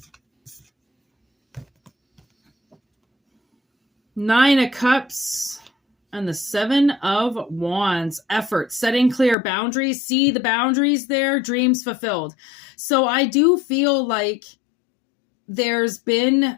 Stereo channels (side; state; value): right; drops out; at 9.3 s